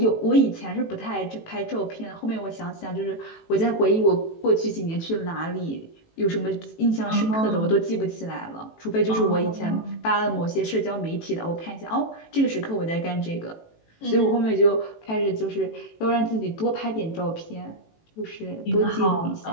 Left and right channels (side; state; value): right; late; 18 ms